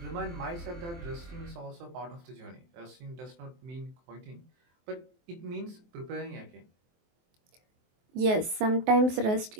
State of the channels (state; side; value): late; left; 23 ms